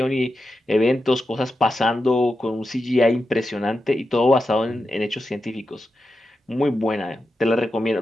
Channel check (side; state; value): both; normal; correlation 0.89